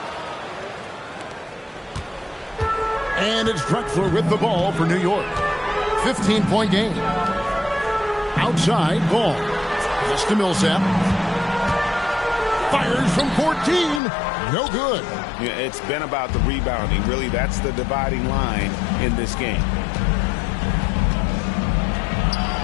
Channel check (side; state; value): right; drops out; at 14.0 s